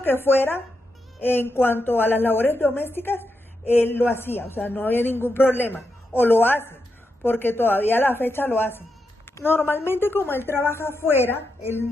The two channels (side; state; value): both; normal; correlation 0.85